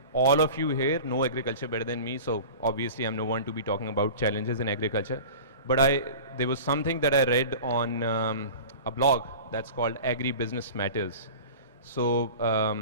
All of you here know agriculture better than me, so obviously I'm no one to be talking about challenges in agriculture. But there was something that I read on a blog that's called Agri-Business Matters. So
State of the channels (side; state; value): both; inverted; correlation -0.37